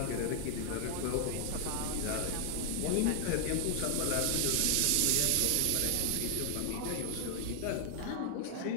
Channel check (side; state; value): both; different; correlation 0.00